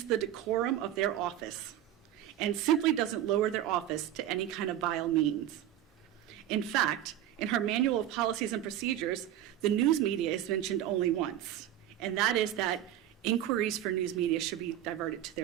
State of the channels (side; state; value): left; quieter; 11.8 dB